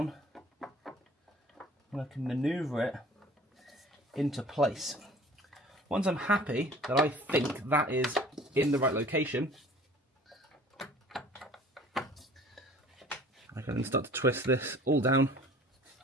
and I can maneuver it into place. Once I'm happy that I think that is in the right location, I can then start to twist this all down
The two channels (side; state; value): both; normal; correlation 0.48